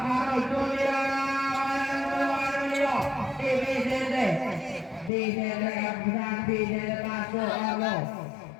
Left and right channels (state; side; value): drops out; right; at 5.1 s